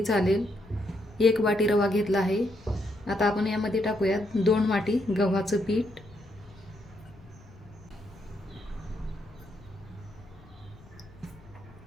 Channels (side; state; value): left; noise; rumble, 23 dB below the sound